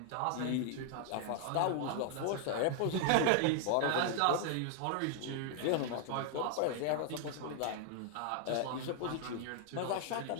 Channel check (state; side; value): different; both; correlation 0.00